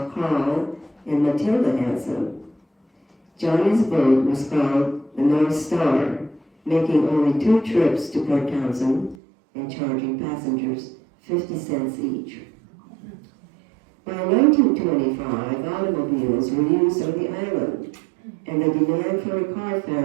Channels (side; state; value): left; drops out; at 9.2 s